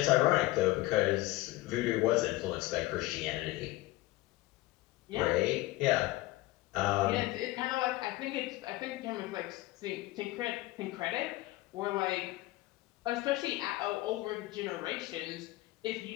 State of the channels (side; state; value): right; quieter; 18.3 dB